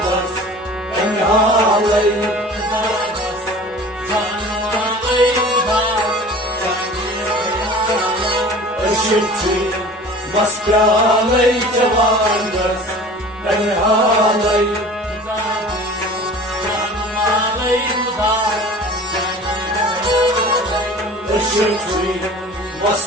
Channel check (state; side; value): normal; both; correlation 0.42